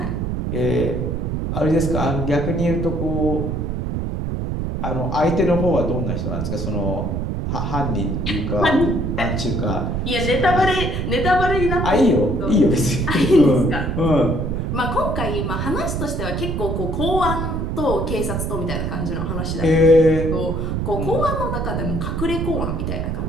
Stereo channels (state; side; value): noise; right; rumble, 2 dB below the sound